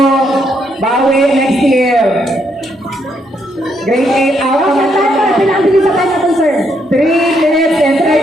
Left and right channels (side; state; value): both; normal; correlation 0.75